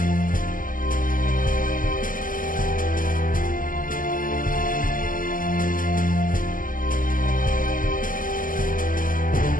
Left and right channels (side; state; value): right; late; 0.40 ms